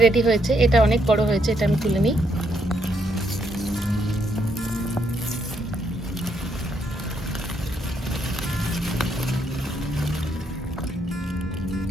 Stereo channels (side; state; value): both; normal; correlation 0.75